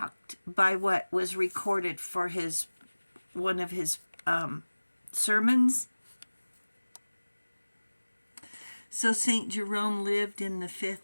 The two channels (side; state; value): both; inverted; correlation -1.00